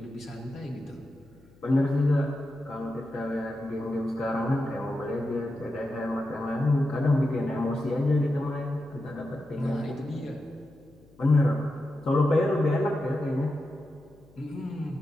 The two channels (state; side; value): noise; left; hum, 27 dB below the sound